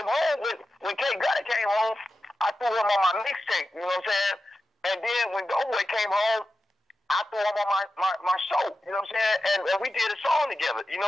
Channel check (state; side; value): normal; both; correlation 0.91